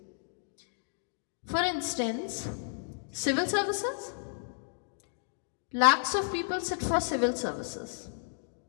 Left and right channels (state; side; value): silent; right; digital silence